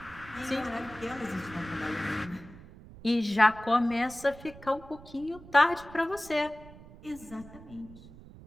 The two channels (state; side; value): noise; right; rumble, 18 dB below the sound